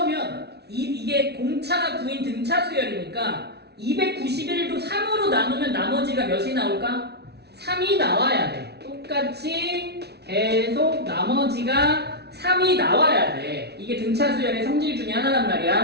이게 공차가 9인 등차 수열이니까 291도 3으로 나누면 나머지가 몇이 나올까? 3이 나와야 돼. 똑같이 계속 나머지가 3이 나와야 돼. 이게 등차 수열의 성질 중에 하나란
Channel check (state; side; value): late; left; 0.48 ms